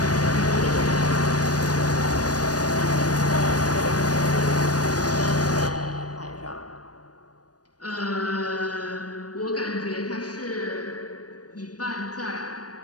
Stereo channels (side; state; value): right; late; 0.68 ms